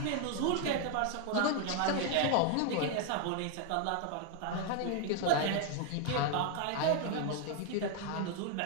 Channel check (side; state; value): both; different; correlation 0.00